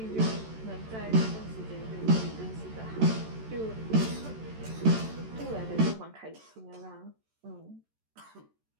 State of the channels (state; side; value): late; left; 14 ms